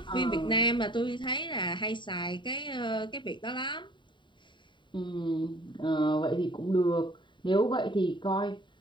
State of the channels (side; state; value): right; late; 0.23 ms